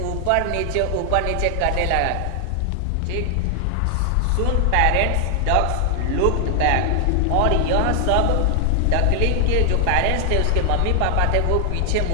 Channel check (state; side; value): different; both; correlation 0.00